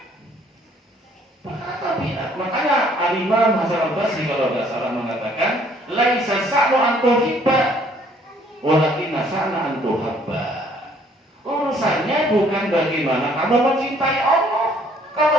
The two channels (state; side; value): normal; both; correlation 0.61